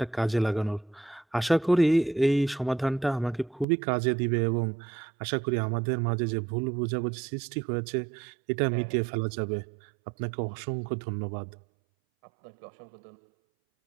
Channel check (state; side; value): drops out; left; at 3.7 s